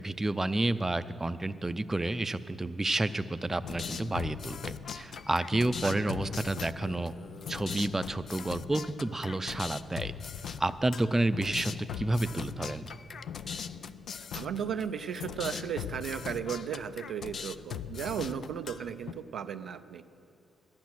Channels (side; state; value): both; normal; correlation 0.88